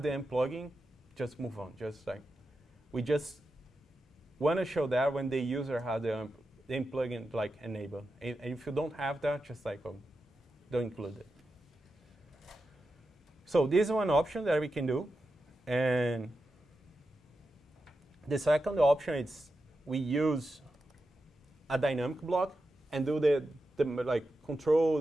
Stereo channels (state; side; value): normal; both; correlation 0.89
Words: the AMP plugin, just move on. Just like, we just want to show that when the user has the AMP plugin like enabled. And if you don't have that, just like, don't include it. So this is one option that we can do. And the second option is we use a dynamic block and do the like control